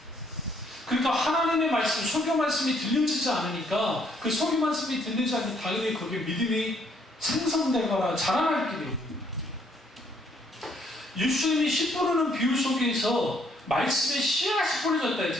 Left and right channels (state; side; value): normal; both; correlation 0.68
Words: 그러니까 하나님의 말씀, 설교 말씀이 들려지지 않으니까 그 설교 말씀이 들리지 않으면 당연히 거기에 믿음이 생성되거나 자라날 길이 없는 거예요. 예수님이 씨 뿌리는 비유 속에서 말씀의 씨앗이 뿌려졌다